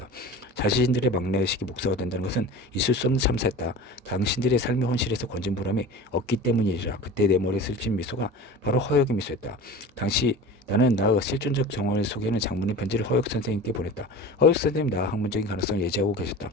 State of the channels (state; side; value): normal; both; correlation 0.35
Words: 자신들의 막내의식이 목사가 된다는 것은 있을 수 없는 참사였다. 당신들의 삶의 헌실에서 건진 보람이 없기 때문이라. 그때 내 머리에 스친 미소가 바로 허역의 미소였다. 당시 나는 나의 실존적 정황을 소개하는 장문의 편지를 허역 선생님께 보냈다. 허역 선생님 나의 학문적인 가능성을 예지하고 계셨다.